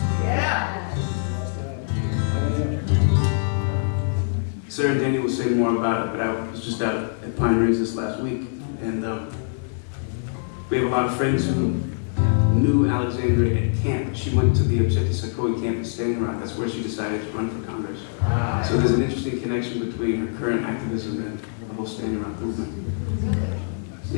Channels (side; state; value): right; silent; digital silence